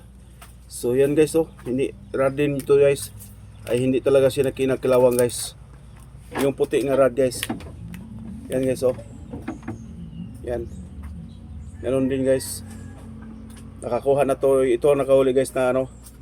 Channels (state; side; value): identical; both; correlation 1.00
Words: So yan guys oh, hindi rod din ito guys. Ay hindi talaga siya kinakilawang guys. Yung puti nga rod guys. Yan guys oh. Yan. Ganun din guys. Nakakuha na to, ito nakahuli guys na ano.